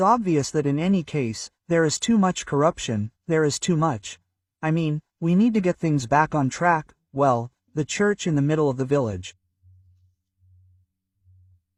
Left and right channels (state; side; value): identical; both; correlation 1.00